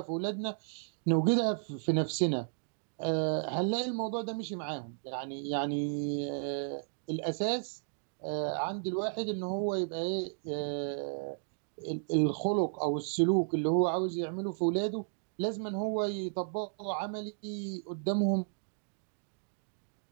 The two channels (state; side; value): silent; left; digital silence